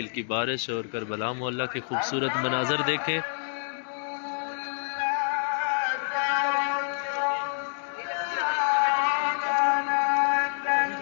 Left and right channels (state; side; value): silent; right; digital silence